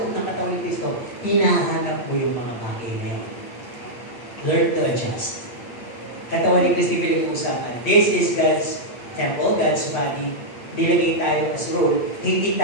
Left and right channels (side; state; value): right; late; 8.3 ms